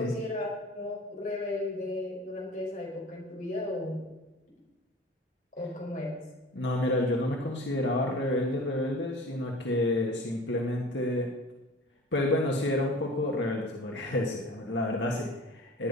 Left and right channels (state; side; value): normal; both; correlation 0.41